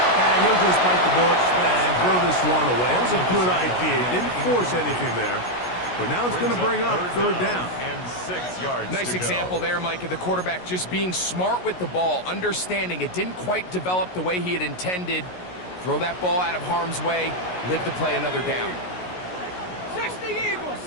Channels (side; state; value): right; late; 16 ms